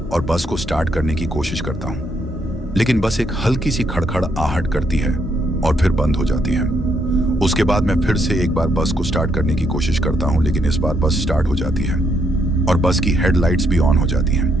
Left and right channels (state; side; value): normal; both; correlation 0.75